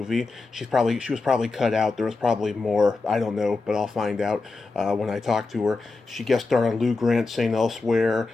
She was probably cut out. There was probably more. I don't know, but I'll find out when I talk to her. She guest starred on Lou Grant, St. Elsewhere,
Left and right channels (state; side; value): quieter; right; 3.7 dB